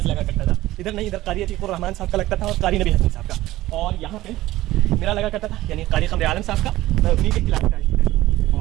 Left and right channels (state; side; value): quieter; left; 16.3 dB